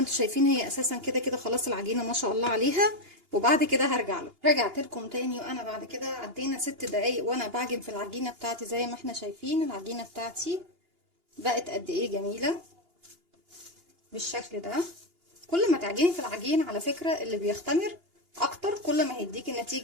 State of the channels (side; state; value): left; late; 2.8 ms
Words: شايفين هي اساسا كده كده خلاص العجينة ما شاء الله عليها. وبعد كده هرجع له. رجعت لكم تاني، وانا بعد كده عدينا 6 دقايق وانا بعجن في العجينة بتاعتي. زي ما احنا شايفين العجينة بتاعتي بقت قد ايه جميلة بالشكل ده. كل ما تعجني في العجين على فكرة اللي بيختمر اكتر كل ما هيديكي